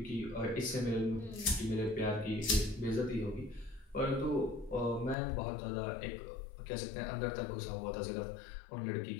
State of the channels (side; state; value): right; drops out; at 5.2 s